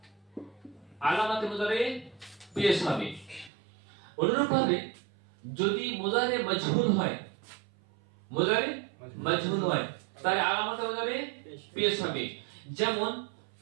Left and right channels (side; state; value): left; drops out; at 3.5 s